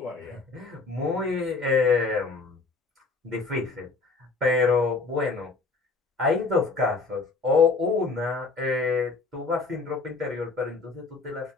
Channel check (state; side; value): quieter; right; 4.0 dB